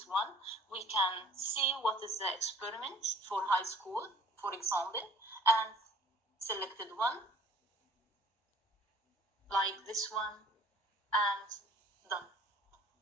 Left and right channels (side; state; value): both; normal; correlation 0.51